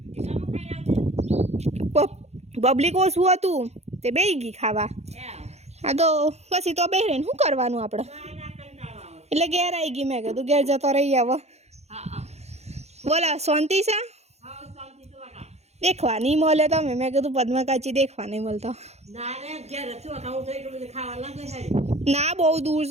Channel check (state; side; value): late; left; 0.31 ms